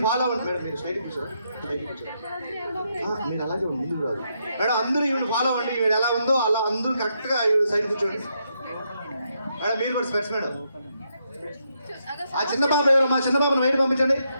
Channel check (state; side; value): inverted; both; correlation -0.79